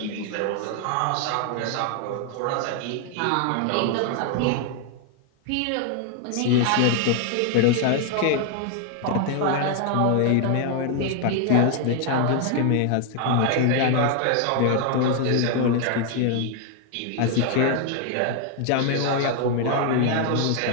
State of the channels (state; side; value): different; both; correlation 0.00